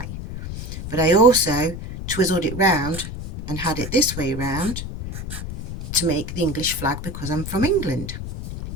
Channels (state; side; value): noise; left; rumble, 8 dB below the sound